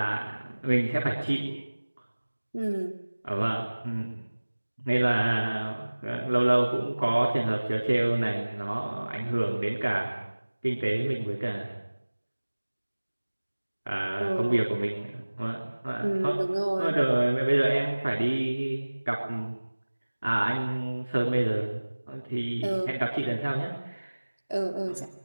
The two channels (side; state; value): both; inverted; correlation -1.00